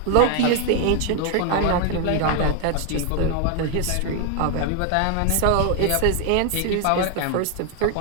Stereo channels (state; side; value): different; both; correlation 0.00